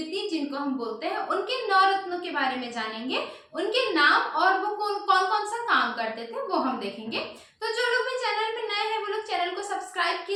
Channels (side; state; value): both; identical; correlation 1.00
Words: जिनको हम बोलते हैं उनके 9 रत्नों के बारे में जानेंगे, उनके नाम और वो कौन कौन सा काम करते थे वो हम देखेंगे। तो जो लोग भी चैनल पे नए हैं वो लोग चैनल को सब्सक्राइब